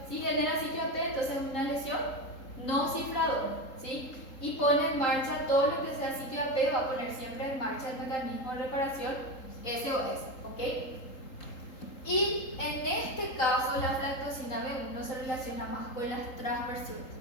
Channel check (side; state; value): right; late; 3.8 ms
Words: Si genera sitio AP, entonces es una lesión no cifradora, ¿sí? Y pone en marcha todo lo que sea sitio AP, va a poner siempre en marcha el mecanismo de reparación SOS, ¿ok? Y en este caso la aflatoxina B1 se relaciona más con las transversiones,